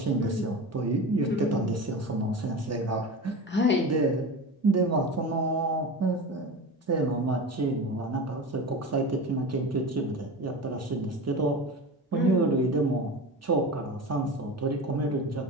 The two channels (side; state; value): both; normal; correlation 0.29